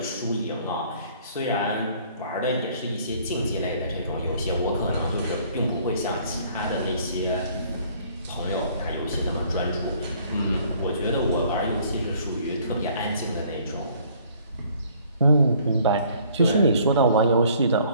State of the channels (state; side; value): inverted; both; correlation -0.58